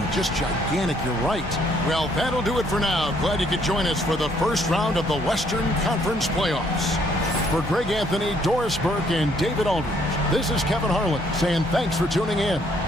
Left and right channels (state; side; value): normal; both; correlation 0.67